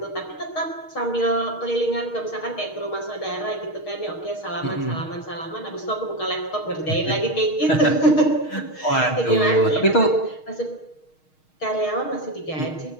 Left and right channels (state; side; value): late; right; 6.4 ms